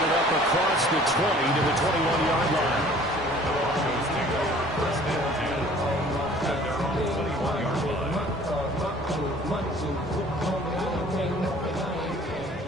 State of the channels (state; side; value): noise; left; rumble, 20 dB below the sound